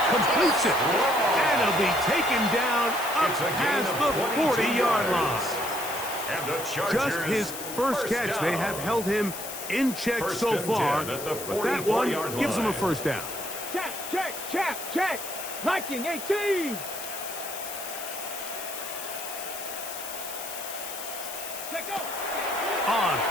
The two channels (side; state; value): left; noise; hiss, 9 dB below the sound